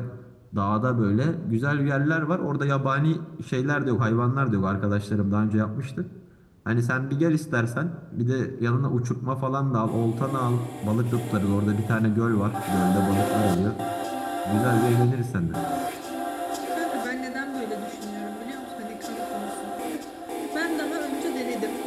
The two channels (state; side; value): identical; both; correlation 1.00